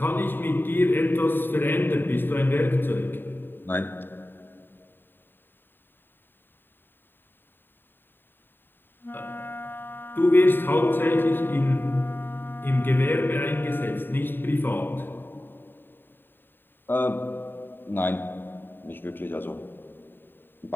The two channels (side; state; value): right; late; 0.095 ms